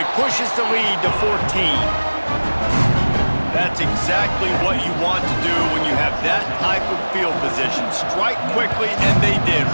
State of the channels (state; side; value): inverted; both; correlation -1.00